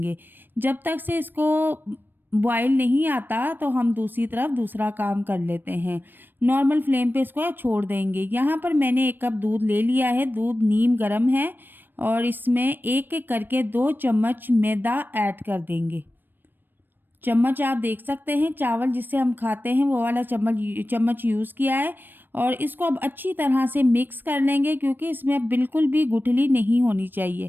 जब तक से इसको बॉयल नहीं आता तो हम दूसरी तरफ दूसरा काम कर लेते हैं। नॉर्मल फ्लेम पे इसको छोड़ देंगे। यहाँ पर मैंने 1 कप दूध ले लिया है। दूध नीम गर्म है और इसमें एक एक करके 2 चम्मच मैदा ऐड कर देंगे। चम्मच आप देख सकते हैं, चावल जिससे हम खाते हैं वो वाला चम्मच यूज़ किया है। और इसको अब अच्छी तरह से मिक्स कर लेंगे, क्योंकि इसमें अब बिल्कुल भी गुठली नहीं होनी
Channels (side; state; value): left; late; 0.094 ms